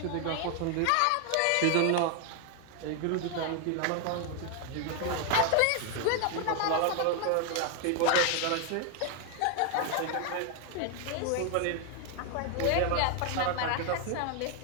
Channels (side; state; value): both; different; correlation 0.01